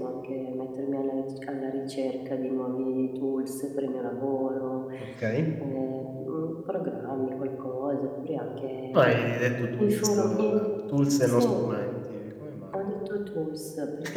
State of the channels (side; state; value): both; identical; correlation 1.00